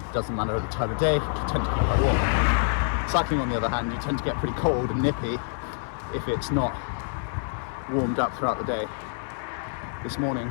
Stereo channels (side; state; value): right; silent; digital silence